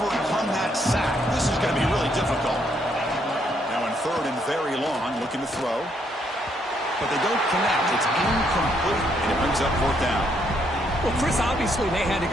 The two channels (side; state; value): both; normal; correlation 0.72